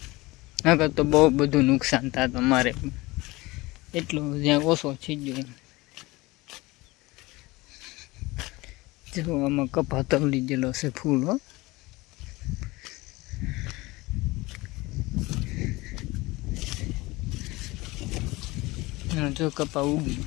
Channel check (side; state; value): right; quieter; 21.5 dB